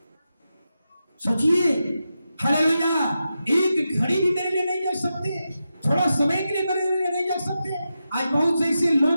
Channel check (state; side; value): inverted; both; correlation -0.89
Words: सोचिए, हालेलुया, एक घड़ी भी मेरे लिए नहीं जग सकते, थोड़ा समय के लिए मेरे लिए नहीं जग सकते। आज बहुत से ऐसे